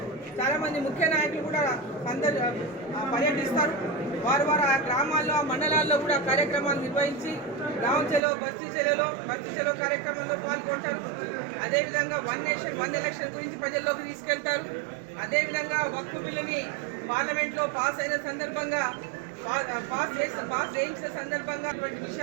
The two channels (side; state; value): left; drops out; at 8.2 s